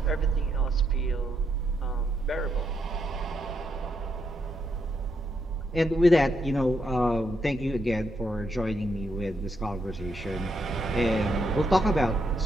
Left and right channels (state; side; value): normal; both; correlation 0.79